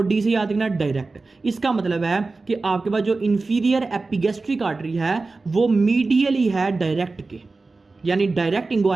डी से याद रखना डायरेक्ट। इसका मतलब है कि आपके पास जो इन्फीरियर एपिगैस्ट्रिक आर्टरी है वो मीडियली है डायरेक्ट के, यानी डायरेक्ट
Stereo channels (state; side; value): quieter; left; 3.7 dB